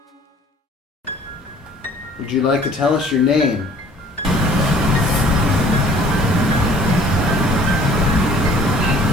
Would you like to tell us your name?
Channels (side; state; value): both; normal; correlation 0.53